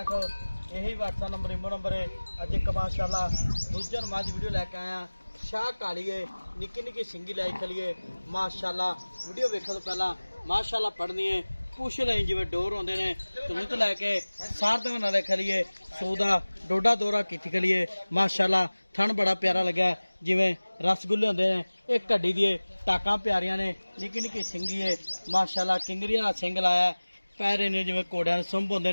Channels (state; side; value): inverted; both; correlation -1.00